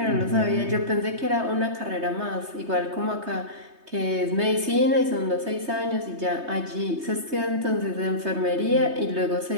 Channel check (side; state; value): left; late; 3.2 ms